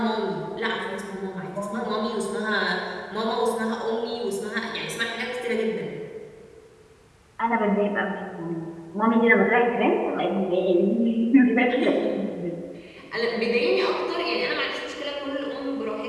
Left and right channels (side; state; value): both; identical; correlation 1.00